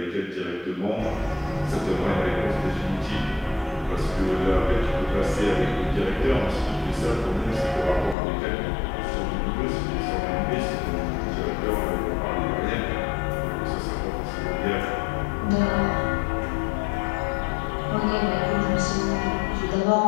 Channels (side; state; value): right; drops out; at 8.2 s